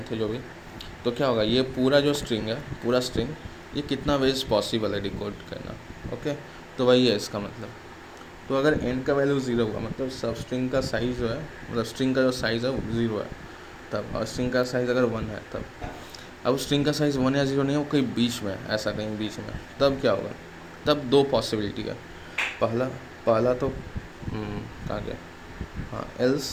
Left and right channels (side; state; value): both; identical; correlation 1.00